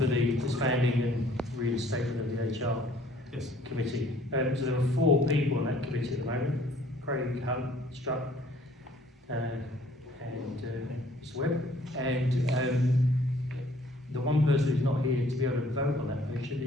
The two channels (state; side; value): normal; both; correlation 0.58